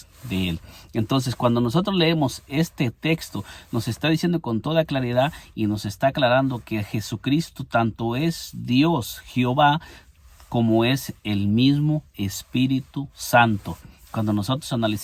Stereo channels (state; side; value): identical; both; correlation 1.00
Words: de Él. Entonces, cuando nosotros leemos este texto, nos está diciendo con toda claridad y nos está aclarando que Jesucristo tanto es Dios, Jehová, como es el mismo Espíritu Santo. Cuando nosotros